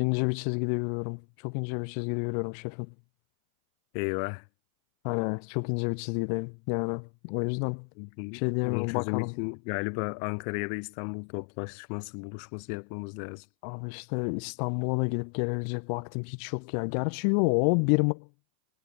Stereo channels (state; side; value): silent; right; 57 dB below the other